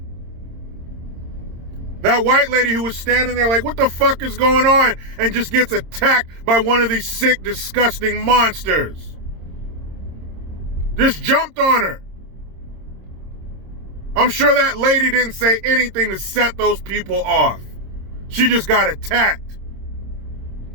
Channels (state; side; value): late; left; 26 ms